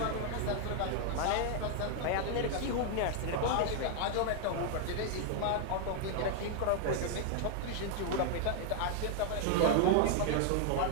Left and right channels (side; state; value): both; different; correlation 0.00